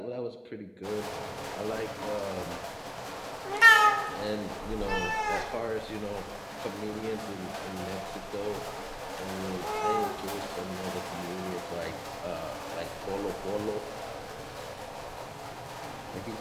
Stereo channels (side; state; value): both; identical; correlation 1.00